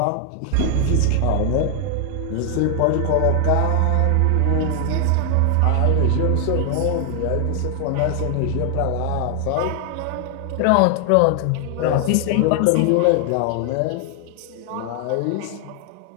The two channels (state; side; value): different; both; correlation 0.00